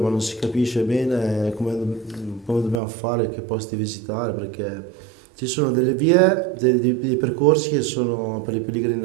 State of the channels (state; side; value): drops out; left; at 2.8 s